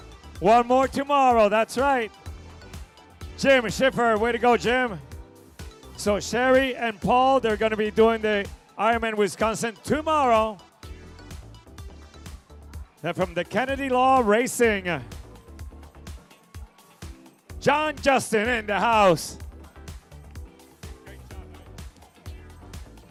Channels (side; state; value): both; identical; correlation 1.00